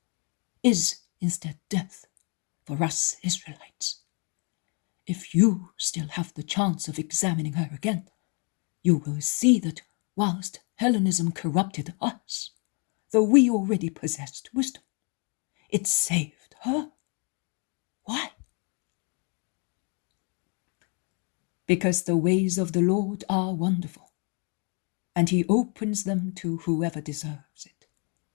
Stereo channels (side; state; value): right; quieter; 35.3 dB